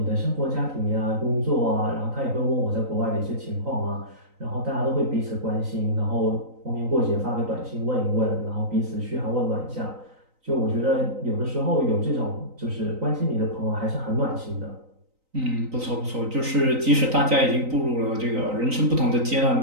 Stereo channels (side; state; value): left; late; 3.9 ms